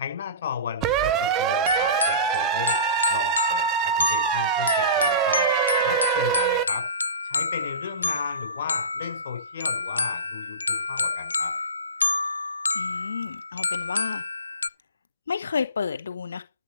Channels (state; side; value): inverted; both; correlation -0.32